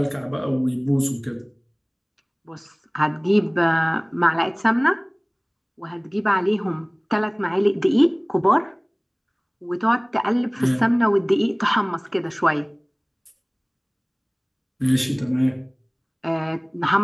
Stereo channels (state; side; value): identical; both; correlation 1.00